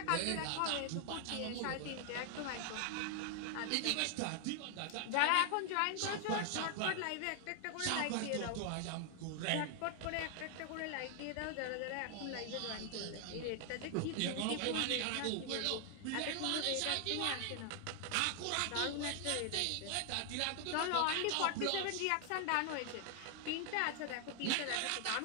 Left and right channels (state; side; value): different; both; correlation 0.00